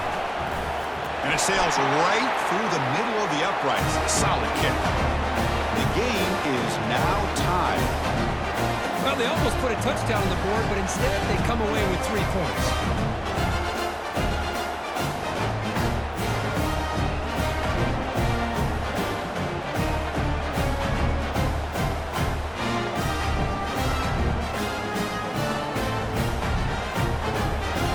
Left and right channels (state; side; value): identical; both; correlation 1.00